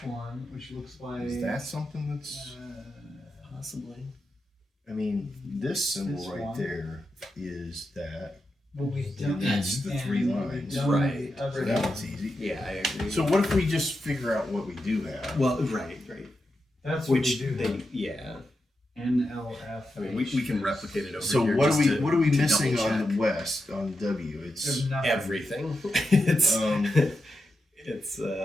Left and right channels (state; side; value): normal; both; correlation 0.88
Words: one, which looks like. Is that something that's? Possibly. I mean, this symbol This right one? there is that. But we've done That's the and 3 we've lines. done Right. the other So that one. one's easy. Yeah, I agree. So what if we just figure out what we do have? Well, right. That's what Which we do. they, yeah. NLF. I mean, we can replicate it over So here. what just are we to missing double on check. the west on W? It's There's nothing. Everything. It's Um, it's